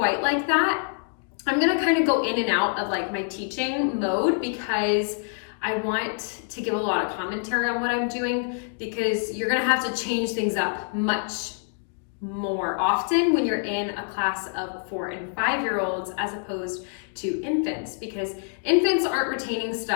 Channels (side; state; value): right; silent; 61 dB below the other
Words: like that. I'm going to kind of go in and out of like my teaching mode because I want to give a lot of commentary on what I'm doing, because you're going to have to change things up much more often when you're in a class of 4 and 5-year-olds as opposed to infants, because infants aren't retaining